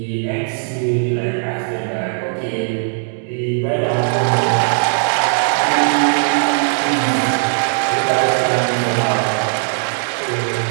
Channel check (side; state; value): left; silent; digital silence